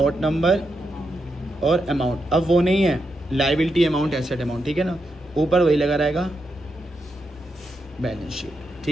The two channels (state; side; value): normal; both; correlation 0.84